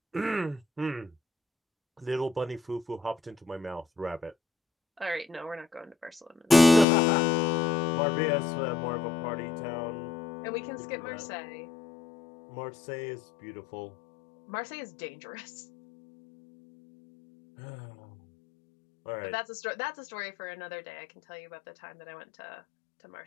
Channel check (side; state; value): right; drops out; at 6.9 s